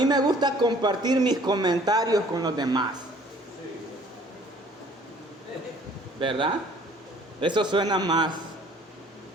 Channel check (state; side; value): normal; both; correlation 0.55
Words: me gusta compartir mis comentarios con los demás. ¿Verdad? Eso suena más